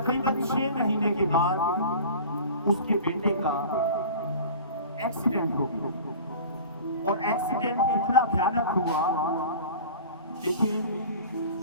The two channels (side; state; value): both; inverted; correlation -0.39